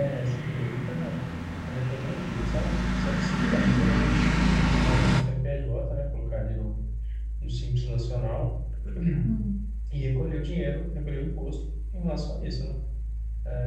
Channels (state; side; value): identical; both; correlation 1.00